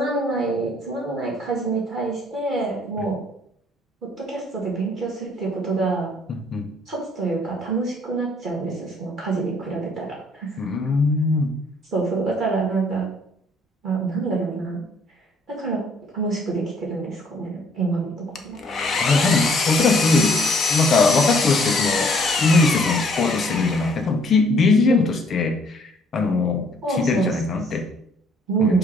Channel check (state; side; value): normal; both; correlation 0.62